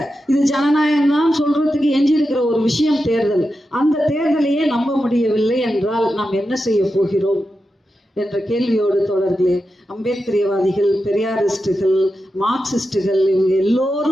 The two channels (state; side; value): normal; both; correlation 0.90